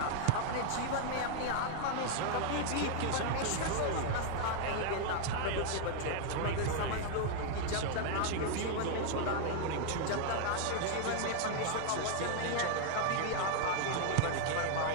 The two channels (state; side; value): different; both; correlation 0.00